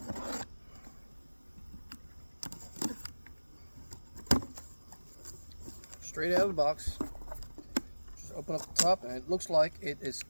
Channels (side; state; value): both; inverted; correlation -1.00